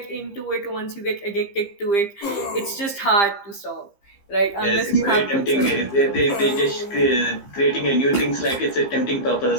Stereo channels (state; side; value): late; right; 15 ms